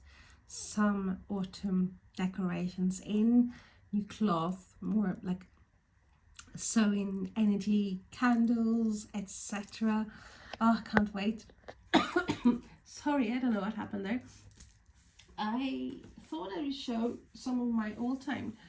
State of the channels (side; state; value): both; identical; correlation 1.00